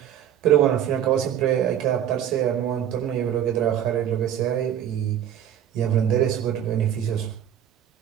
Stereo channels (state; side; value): quieter; left; 10.2 dB